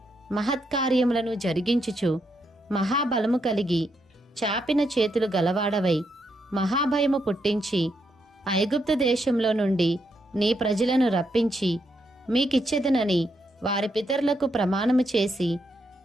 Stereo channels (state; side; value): normal; both; correlation 0.80